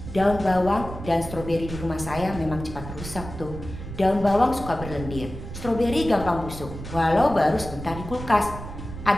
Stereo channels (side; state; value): right; noise; rumble, 10 dB below the sound